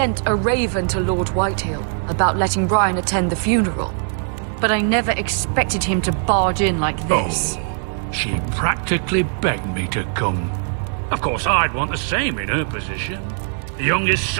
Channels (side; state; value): left; silent; 58 dB below the other